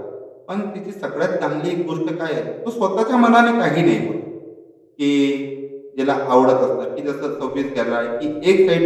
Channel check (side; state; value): both; identical; correlation 1.00